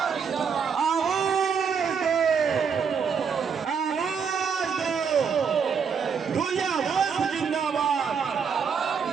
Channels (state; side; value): quieter; left; 6.4 dB